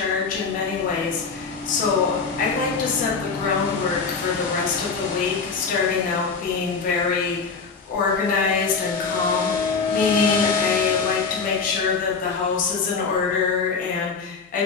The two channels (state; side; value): quieter; right; 5.0 dB